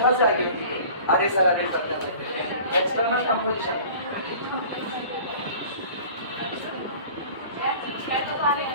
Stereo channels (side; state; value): both; inverted; correlation -0.44